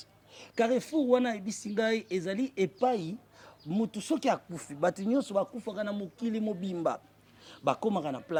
Carrefour, wana Abi Singai, ezali epai, mutu soki akufi, batu nyonso bakufaka na mokili mobimba. Bakomaka na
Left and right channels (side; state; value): both; identical; correlation 1.00